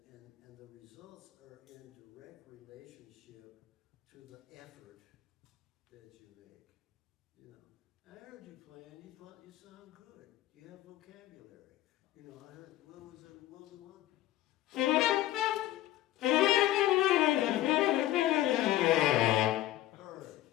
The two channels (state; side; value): quieter; right; 14.9 dB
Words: the results are in direct relationship to the effort that you make. You know, I heard you playing. You thought you sound good. You have vocabulary. You know, I heard. What was the one? Heard.